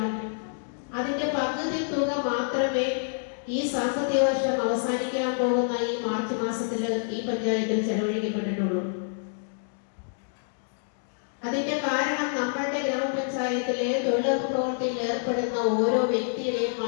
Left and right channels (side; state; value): right; silent; digital silence